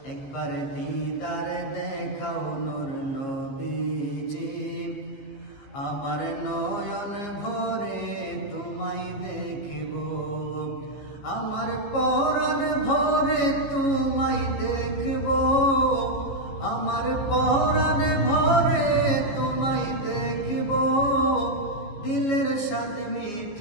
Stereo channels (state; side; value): late; right; 15 ms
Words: একবার দিদার দেখাও নূর নবীজি, আমার নয়ন ভরে তোমায় দেখব। আমার পরাণ ভরে তোমায় দেখব, আমার পরাণ ভরে তোমায় দেখব। দিলের স্বাদ